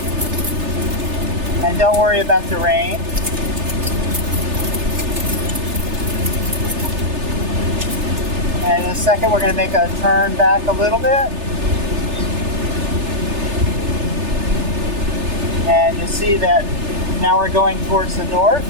And don't worry about the rain. And in a second, we're going to make a turn back a little bit. And you'll see that now we're going towards the north.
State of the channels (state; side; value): late; left; 3.3 ms